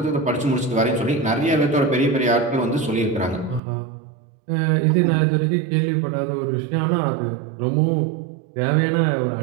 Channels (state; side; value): drops out; left; at 3.6 s